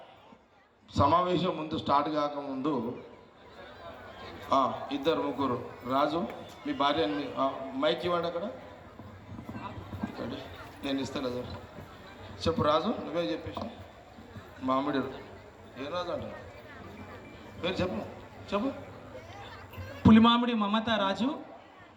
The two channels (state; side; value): identical; both; correlation 1.00